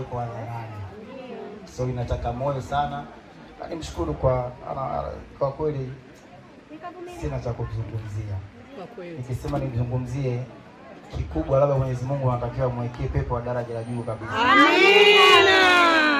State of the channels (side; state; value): both; identical; correlation 1.00